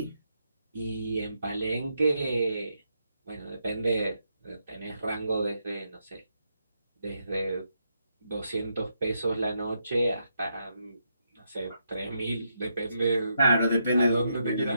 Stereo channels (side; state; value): both; inverted; correlation -0.80